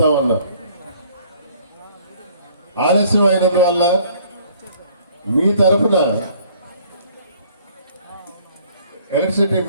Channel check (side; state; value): both; inverted; correlation -0.58